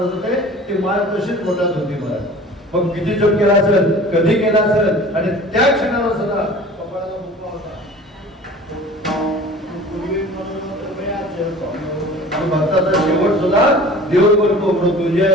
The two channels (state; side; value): normal; both; correlation 0.43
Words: होते. ती माळ तशीच पोटात होती. मला मग किती जप केला असेल, कधी केला असेल, आणि त्या क्षणाला सुद्धा कपाळाला मुक्का होता. भक्ताचा शेवट सुद्धा देव करतो.